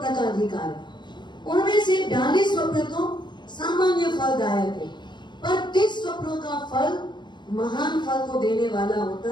का अधिकार है, उनमें से 42 स्वप्न तो सामान्य फलदायक है, पर 30 स्वप्नों का फल महान फल को देने वाला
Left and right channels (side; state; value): right; late; 0.22 ms